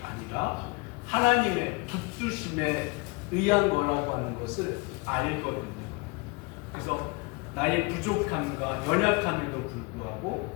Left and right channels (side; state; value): right; quieter; 27.3 dB